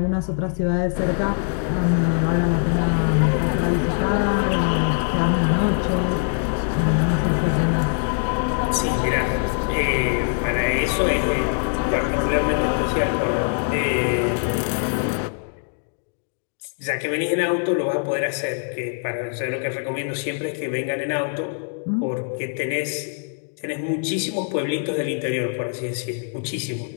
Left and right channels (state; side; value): silent; right; 62 dB below the other